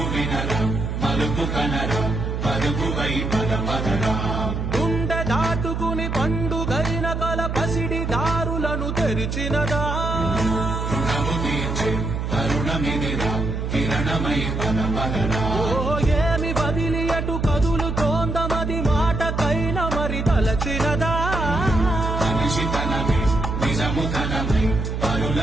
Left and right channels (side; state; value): right; noise; hum, 2 dB below the sound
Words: వినరా మలుపు కనరా పరుగువై పద పదరా గుండె దాటుకుని పండుగైన కల పసిడి దారులను తెరిచినదా రుణము తీర్చే కరుణమిదిరా కిరణమై పద పదరా ఓ ఏమి వదిలి అటు కదులుతోందమది మాటకైన మరి తలచినదా మనిషితనమే నిజముతనమై